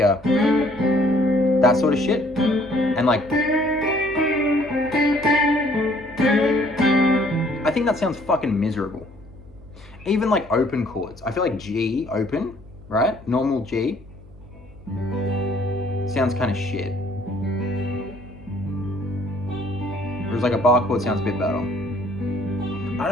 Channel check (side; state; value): right; noise; hum, 23 dB below the sound